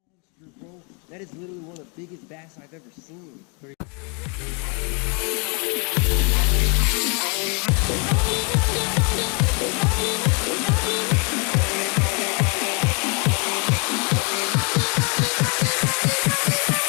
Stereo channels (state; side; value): quieter; right; 35.0 dB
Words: monster, bro. That is literally one of the biggest bass I've ever seen.